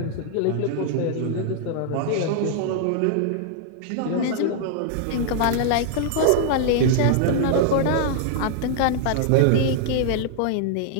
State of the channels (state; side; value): different; both; correlation -0.01